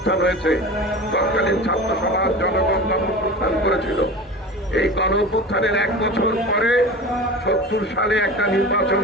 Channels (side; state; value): both; normal; correlation 0.33